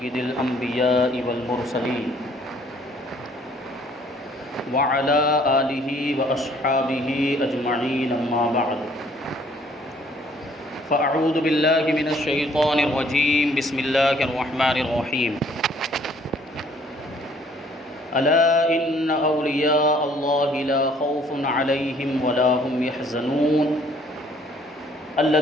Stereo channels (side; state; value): both; normal; correlation 0.61